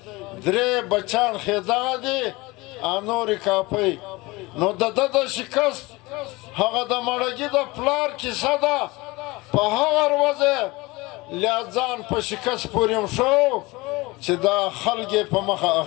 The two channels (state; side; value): quieter; right; 22.6 dB